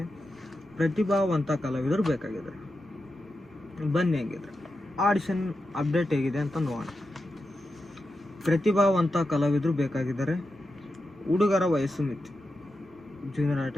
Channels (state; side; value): normal; both; correlation 0.89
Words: ಪ್ರತಿಭಾವಂತ ಕಲಾವಿದರು ಬೇಕಾಗಿದ್ದಾರೆ. ಬನ್ನಿ ಹೇಗಿದ್ರೆ ಆಡಿಷನ್ ಅಪ್ಡೇಟ್ ಹೇಗಿದೆ ಅಂತ ನೋಡೋಣ. ಪ್ರತಿಭಾವಂತ ಕಲಾವಿದರು ಬೇಕಾಗಿದ್ದಾರೆ. ಹುಡುಗರ ವಯಸ್ಸು ಮಿತಿ ಜೂನಿಯರ್